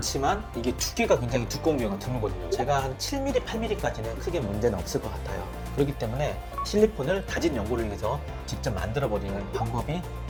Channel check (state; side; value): identical; both; correlation 1.00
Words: 이게 두께가 굉장히 두꺼운 경우가 드물거든요. 제가 한 7mm, 8mm까지는 크게 문제는 없을 것 같아요. 그렇기 때문에 실리콘을 다진 연골을 위해서 직접 만들어버리는 방법이